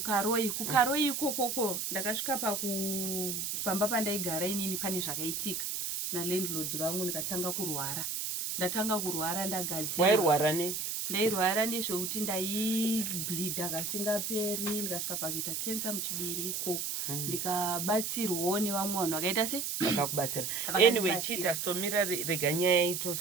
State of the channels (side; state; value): right; noise; hiss, 2 dB below the sound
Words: kuKaroi ikoko ndakasvika pamba pandaigara inini pane zvakaitika nalandlord vangu ndikatanga kurwara. Ndatanga kurwara ndagadzira. Wairwara ne? Ndairwara nezvekuti ndaibleeda kasingaperi ndikasvika pakuita cancer muchibereko. Ndikabatsirwawo nevamwe vanhu vakaita se vakakubatsira. Anyway, chita somira rega nyaya